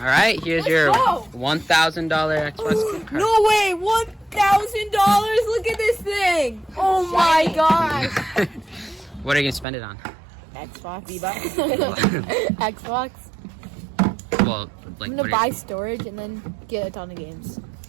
right, here's Let's your go. $1,000 Xbox gift card. No way! $1,000! Look at this thing! Oh my gosh! What are you gonna spend it on? Xbox. V-Bucks. Xbox. Well, like I'm what gonna buy storage and then get a ton of games.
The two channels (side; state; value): left; drops out; at 9.7 s